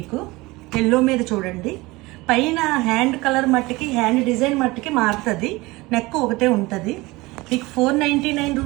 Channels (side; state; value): left; quieter; 21.7 dB